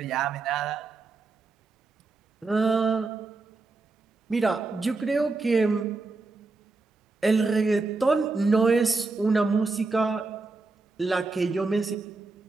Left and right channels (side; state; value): left; quieter; 3.7 dB